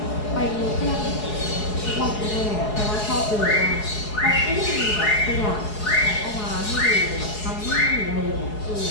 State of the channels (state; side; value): late; right; 4.7 ms